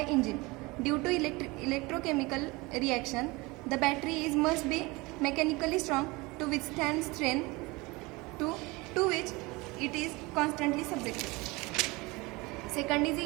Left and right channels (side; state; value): left; quieter; 23.8 dB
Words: engine. Due to electrochemical reaction, the battery must be mechanically strong to withstand strain to which it is constantly subjected. Second is